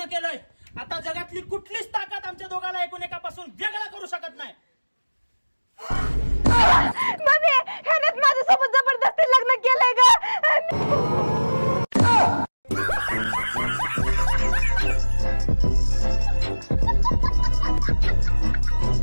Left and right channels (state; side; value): inverted; both; correlation -1.00